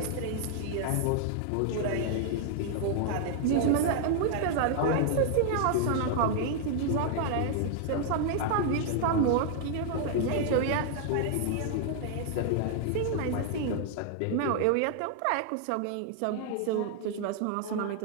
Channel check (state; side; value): different; both; correlation 0.00